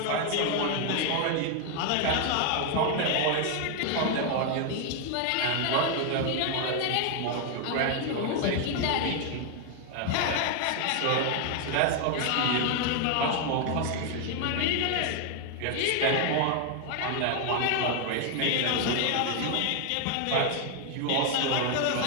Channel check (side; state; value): both; different; correlation 0.00